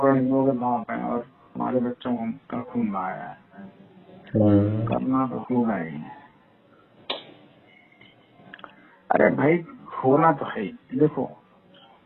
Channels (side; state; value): both; identical; correlation 1.00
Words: हिंदुओं के बाप हैं और हमारे बच्चों का खून बहाया है, करना तो क्यों नहीं। अरे भाई होना तो है, देखो